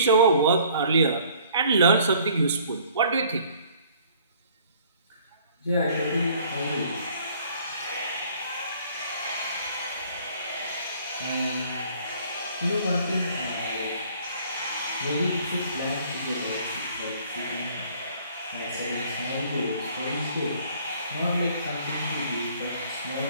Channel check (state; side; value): inverted; both; correlation -0.57